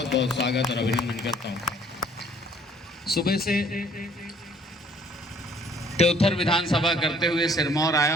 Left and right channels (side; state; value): both; normal; correlation 0.59